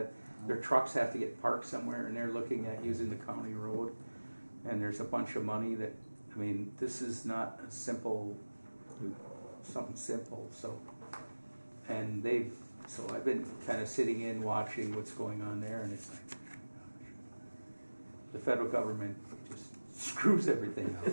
Their trucks have to get parked somewhere, and they're looking at using the county road. And there's a bunch of money that, I mean, this is not a simple, something simple. So I've been kind of sitting in watching what's going on there, and it's like, the federal government just screws everything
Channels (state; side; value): inverted; both; correlation -1.00